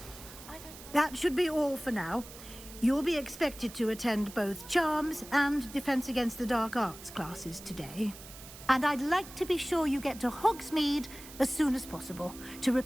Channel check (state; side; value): noise; right; hiss, 16 dB below the sound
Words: I don't... That should be all for now. You'll be expected to attend both Charms and Defense Against the Dark Arts classes today. And I'd like to be sure you get to Hogsmeade as soon as possible to